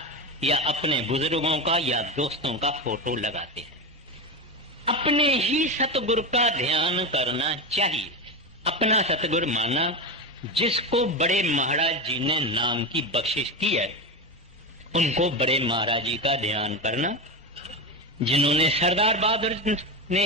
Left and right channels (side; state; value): both; normal; correlation 0.17